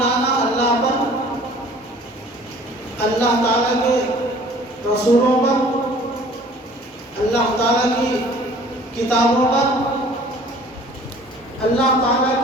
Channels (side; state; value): both; normal; correlation 0.51